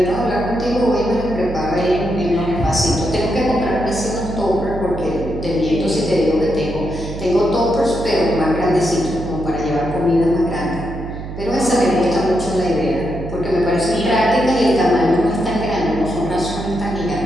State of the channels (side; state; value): right; noise; hum, 9 dB below the sound